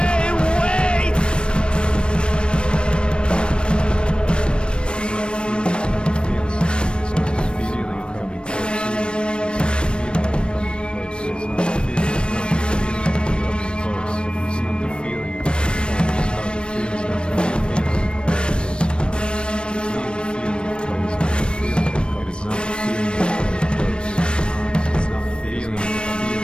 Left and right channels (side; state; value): right; late; 0.056 ms